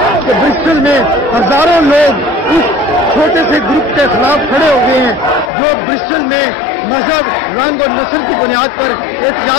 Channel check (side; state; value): right; drops out; at 5.5 s